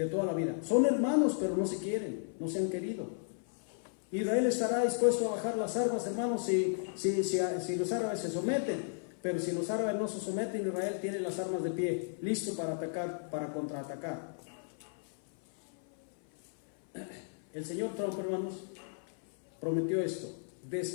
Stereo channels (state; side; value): silent; right; 55 dB below the other